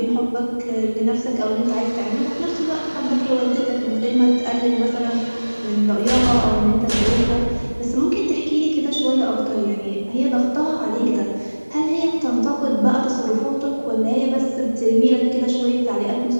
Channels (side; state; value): both; inverted; correlation -1.00